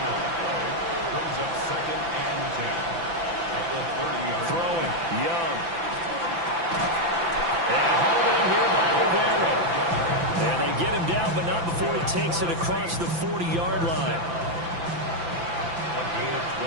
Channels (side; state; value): left; late; 5.9 ms